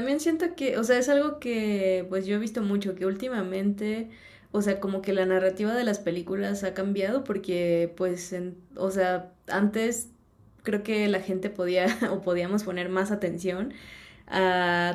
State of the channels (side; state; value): both; identical; correlation 1.00